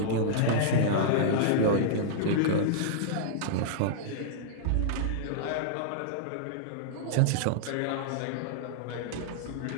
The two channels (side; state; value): both; different; correlation -0.02